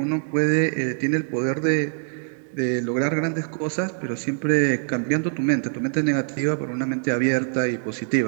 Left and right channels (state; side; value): silent; left; 63 dB below the other